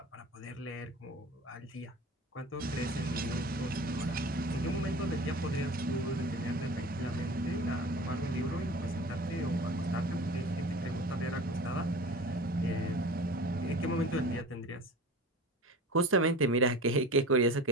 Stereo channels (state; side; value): normal; both; correlation 0.37